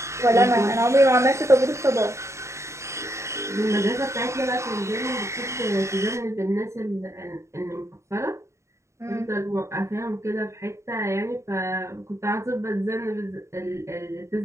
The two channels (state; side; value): late; left; 0.14 ms